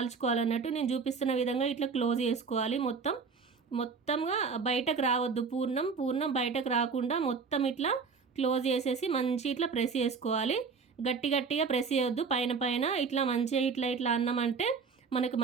నేను చూపిస్తున్న విధంగా ఇట్లా క్లోజ్ చేసుకోవాలి. మొత్తంగా బయటకు రావద్దు. పూర్ణం బయటకు రాకుండా మొత్తం ఇట్లా క్లోజ్ చేసేసి మంచి ఇట్లా ప్రెస్ చేసుకోవాలి. గట్టిగా ప్రెస్ చేయొద్దు. పైన ఇట్లా మంచిగా ఇట్లా అన్నామంటే మనకు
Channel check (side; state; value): left; quieter; 5.2 dB